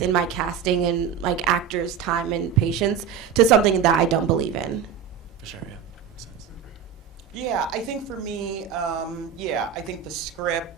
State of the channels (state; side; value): quieter; left; 7.8 dB